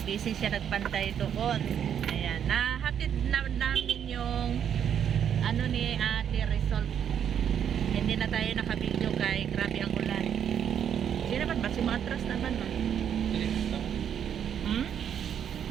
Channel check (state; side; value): quieter; left; 8.8 dB